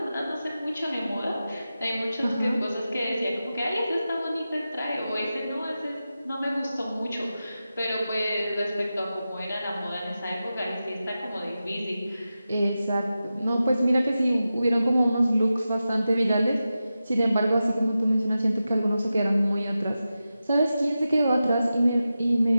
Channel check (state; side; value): inverted; both; correlation -0.92